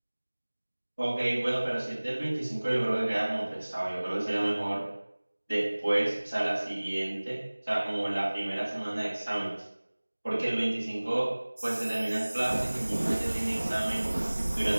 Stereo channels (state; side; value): inverted; both; correlation -1.00